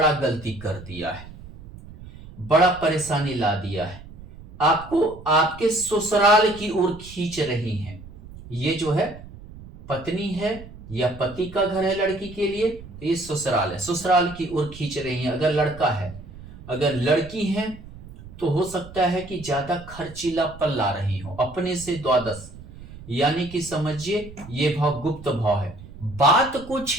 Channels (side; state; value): right; noise; rumble, 17 dB below the sound